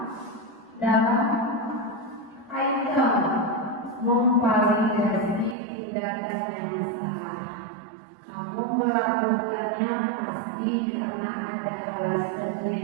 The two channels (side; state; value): left; drops out; at 5.6 s